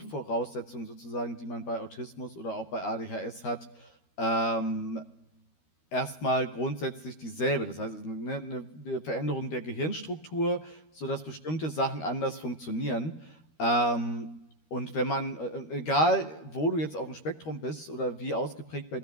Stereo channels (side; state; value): right; late; 13 ms